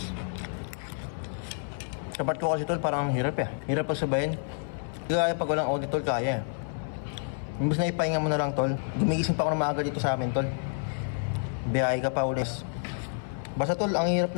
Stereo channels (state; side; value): silent; right; 59 dB below the other